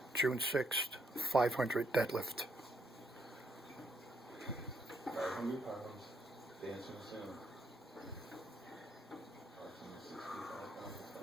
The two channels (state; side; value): normal; both; correlation 0.73